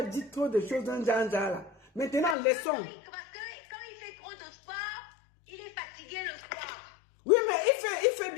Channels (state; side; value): drops out; right; at 2.4 s